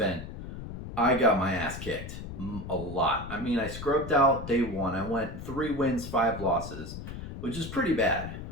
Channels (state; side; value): noise; left; rumble, 9 dB below the sound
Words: I got my ass kicked a lot. I mean, I scrubbed out day one. I went 3 wins, 5 losses, which is pretty bad.